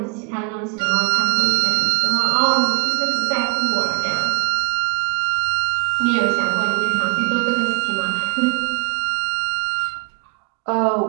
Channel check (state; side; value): quieter; left; 36.1 dB